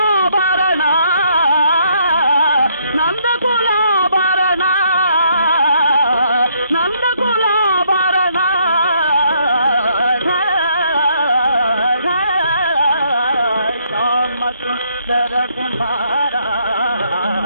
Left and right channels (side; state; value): both; inverted; correlation -0.70